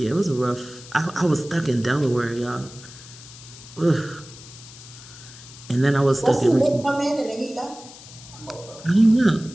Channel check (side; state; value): left; noise; hiss, 18 dB below the sound